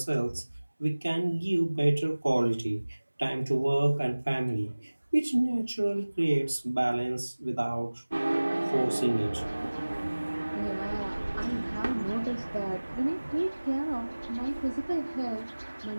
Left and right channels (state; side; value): inverted; both; correlation -1.00